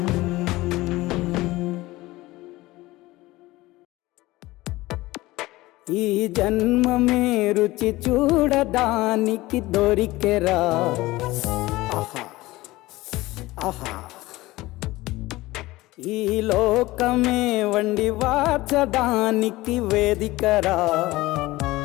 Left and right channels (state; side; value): quieter; right; 19.1 dB